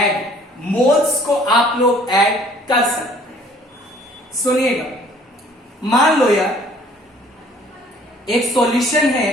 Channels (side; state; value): both; normal; correlation 0.56